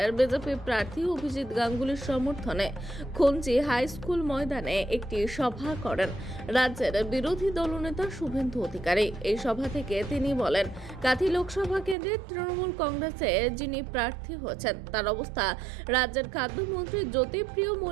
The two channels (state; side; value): drops out; left; at 12.0 s